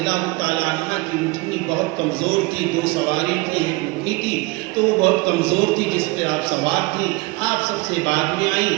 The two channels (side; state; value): left; quieter; 23.1 dB